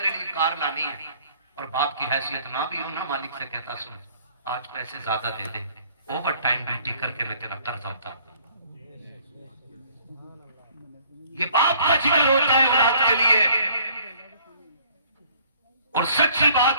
लिए कार लानी है और बाप की हैसियत ना भी हो ना, मालिक से कहता सुन आज पैसे ज्यादा दे दे, ओवर टाइम ड्यूटी करके मैं तेरा कर्जा उतार। ये बाप का जिक्र होता है औलाद के लिए। और सच्ची बात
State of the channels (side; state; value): both; inverted; correlation -0.58